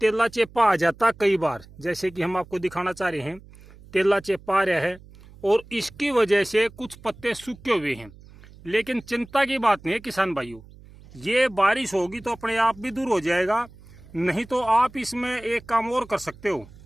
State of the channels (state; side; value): noise; right; hum, 21 dB below the sound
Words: चेपा आ जाता कई बार, जैसे कि हम आपको दिखाना चाह रहे हैं। तेला चेपा आ रहा है और इसकी वजह से कुछ पत्ते सूखे हुए हैं। लेकिन चिंता की बात नहीं है किसान भाइयों, ये बारिश होगी तो अपने आप भी दूर हो जाएगा। नहीं तो आप इसमें एक काम और कर सकते हो।